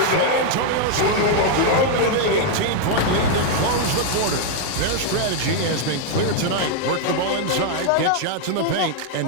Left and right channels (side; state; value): both; different; correlation 0.00